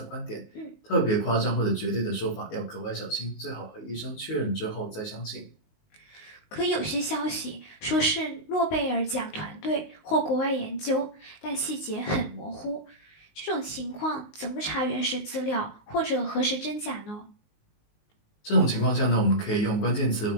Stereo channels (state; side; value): late; right; 19 ms